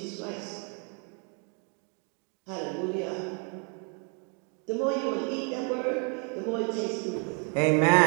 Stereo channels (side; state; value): left; quieter; 38.0 dB